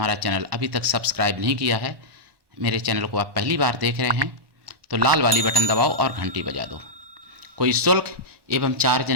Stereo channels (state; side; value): late; left; 1.2 ms